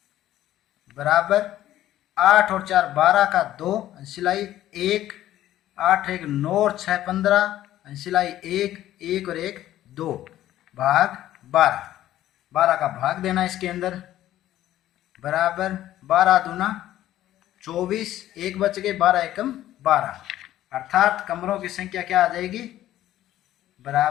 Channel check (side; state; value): right; quieter; 13.4 dB